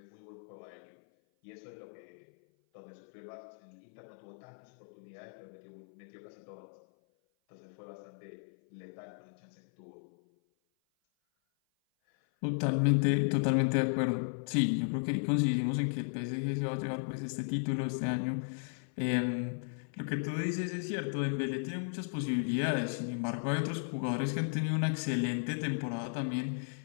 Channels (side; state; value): right; silent; 54 dB below the other